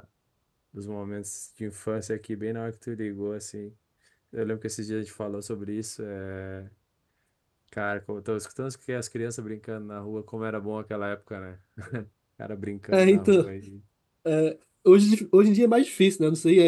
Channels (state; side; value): identical; both; correlation 1.00